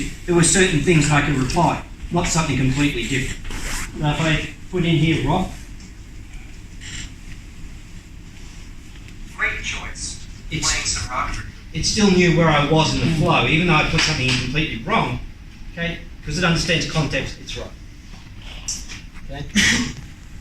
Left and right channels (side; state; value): both; identical; correlation 1.00